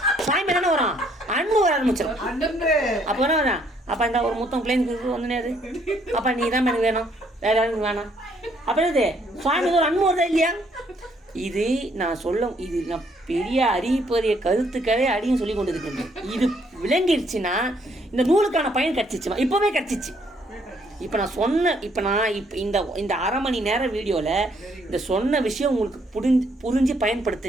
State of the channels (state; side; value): normal; both; correlation 0.68